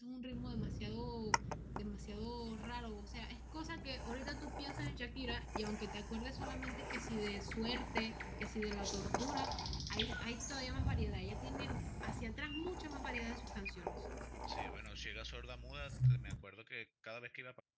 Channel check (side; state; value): both; identical; correlation 1.00